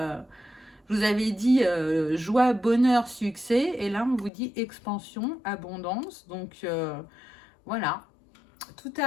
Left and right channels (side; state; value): right; drops out; at 4.3 s